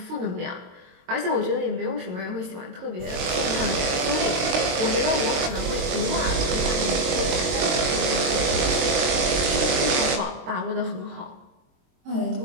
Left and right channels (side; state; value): left; late; 22 ms